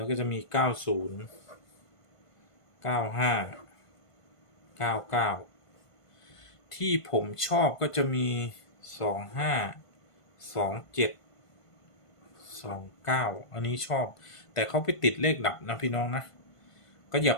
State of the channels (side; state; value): right; late; 1.5 ms